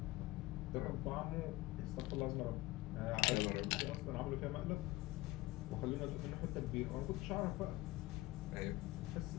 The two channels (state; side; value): quieter; right; 19.5 dB